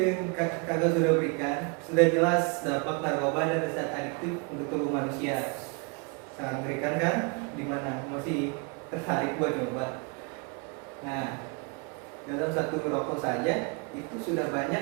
yang kakak sudah berikan, sudah jelas dampak narkoba dan zat adiktif untuk tubuh manusia. Sangat mengerikan kan? Gimana? Masih tertarik buat coba? Nah, dalam satu rokok saja itu sudah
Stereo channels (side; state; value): left; quieter; 32.9 dB